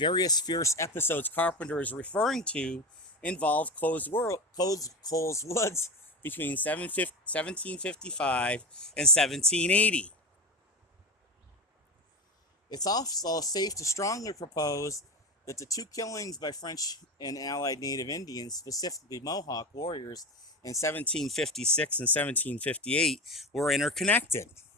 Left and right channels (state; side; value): normal; both; correlation 0.21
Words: fierce episodes Carpenter is referring to involve Coles Woods between 1755 and 1780. It's also safe to strongly propose that the two killings by French and Allied Native Indians, specifically Mohawk warriors, in 1756 and 1758 were interconnected.